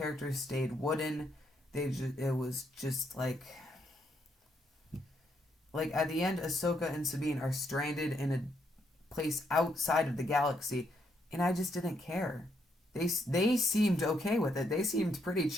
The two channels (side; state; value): both; normal; correlation 0.75